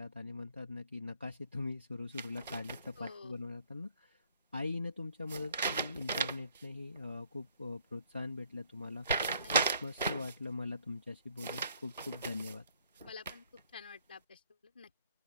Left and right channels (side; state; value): both; inverted; correlation -0.65